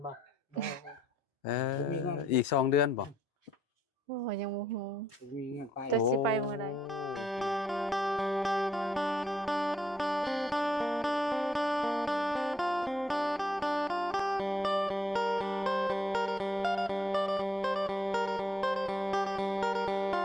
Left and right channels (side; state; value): both; normal; correlation 0.72